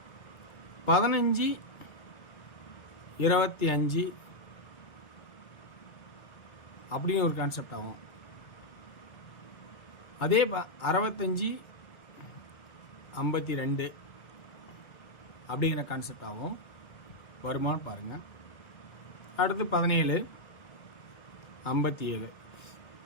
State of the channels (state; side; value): late; right; 1.7 ms